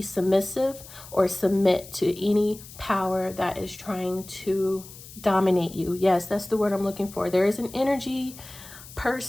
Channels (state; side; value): noise; left; hiss, 17 dB below the sound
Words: or submit to any power that is trying to dominate you. Yes, that's the word I'm looking for. There is an energy,